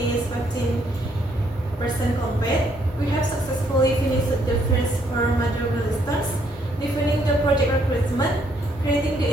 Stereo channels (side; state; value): both; normal; correlation 0.70